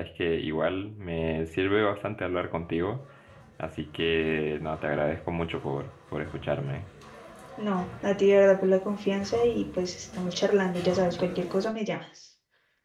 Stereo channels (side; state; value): both; identical; correlation 1.00